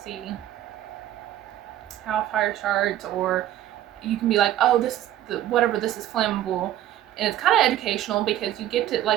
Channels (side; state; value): left; quieter; 12.6 dB